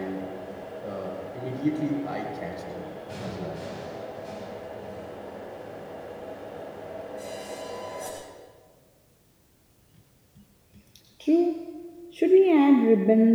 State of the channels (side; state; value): both; identical; correlation 1.00